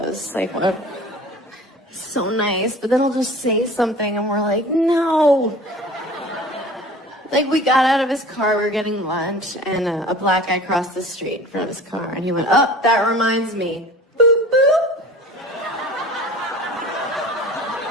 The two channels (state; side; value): normal; both; correlation 0.42